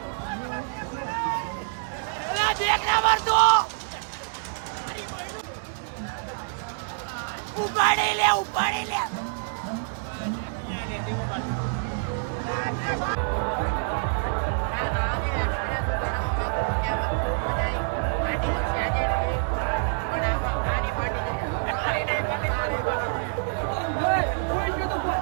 ઉપાડી લે ઉપાડી લે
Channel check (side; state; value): left; silent; digital silence